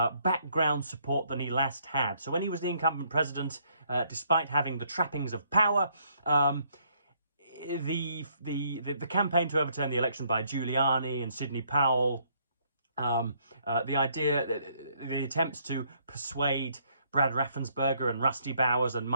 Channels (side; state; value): both; inverted; correlation -0.68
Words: background support than he last had. So when he was the incumbent president, despite having the trappings of power, the campaign to overturn the election by Giuliani and Sidney Powell, the attempts to persuade Brad Raffensperger and Rusty Bowers and